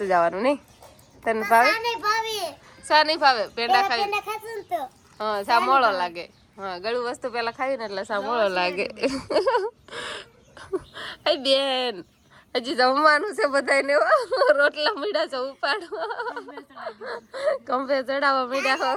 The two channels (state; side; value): identical; both; correlation 1.00